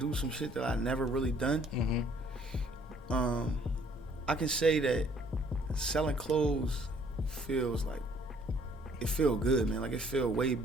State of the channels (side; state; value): both; normal; correlation 0.61